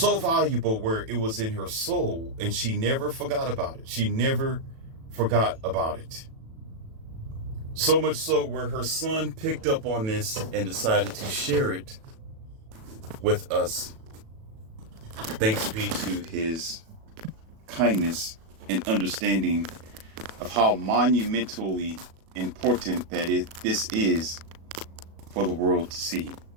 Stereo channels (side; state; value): left; late; 37 ms